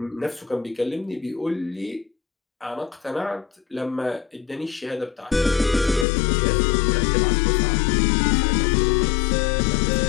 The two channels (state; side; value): drops out; right; at 6.1 s